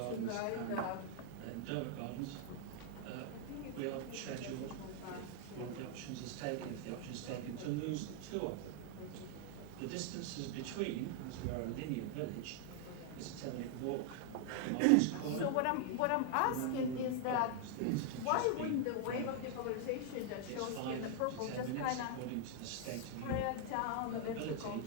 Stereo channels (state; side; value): different; both; correlation 0.00